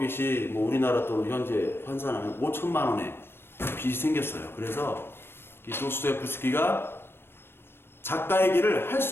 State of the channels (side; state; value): right; late; 0.11 ms